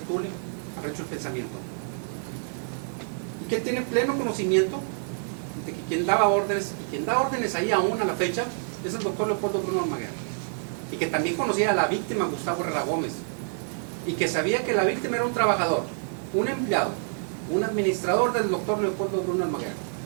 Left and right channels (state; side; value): silent; left; 60 dB below the other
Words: Tule, al rancho El Pensamiento. Y que él tiene pleno conocimiento de que quien daba órdenes, y quien da órdenes ahí aún a la fecha, es el doctor Leopoldo Bruno Almaguer. Y que también conocía a la víctima Gustavo Herrera Gómez. Y que sabía que la víctima era un trabajador, un empleado, un administrador del doctor Leopoldo Bruno Almaguer.